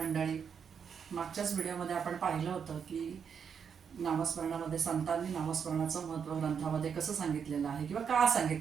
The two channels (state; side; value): quieter; left; 7.0 dB